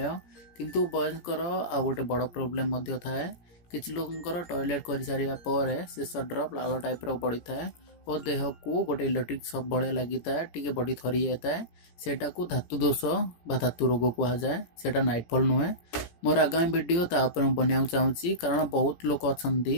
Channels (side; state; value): right; late; 17 ms